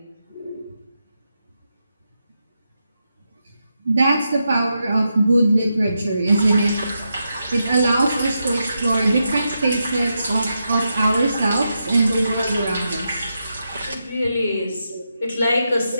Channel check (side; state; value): both; inverted; correlation -0.85